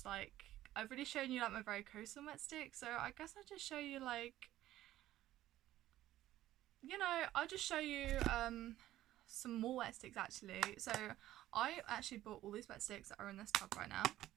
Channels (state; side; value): quieter; left; 14.1 dB